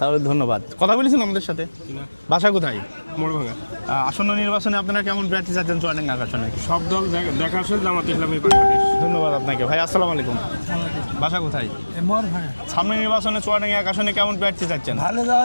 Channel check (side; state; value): both; inverted; correlation -1.00